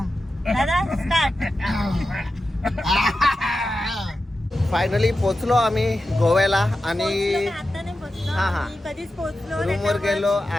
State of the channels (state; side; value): normal; both; correlation 0.92